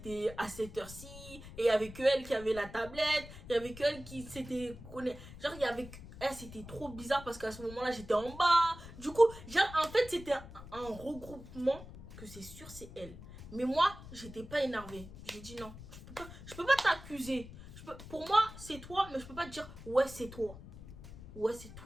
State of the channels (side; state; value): left; noise; rumble, 15 dB below the sound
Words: à cette heure-ci. Et il y avait que elle qui avait la tablette. Il y avait que elle qui s'était connectée. Genre, il y avait elle, c'était trop bizarre parce qu'à ce moment-là, j'étais en bas. Du coup, genre, en fait, c'était un regroupement que c'est sûr, c'est elle. Mais moi, j'étais pas énervée. J'ai dit non, je peux pas t'accuser. Pour moi, c'est toi, mais je peux pas te dire ouais, c'est toi. Ouais, c'est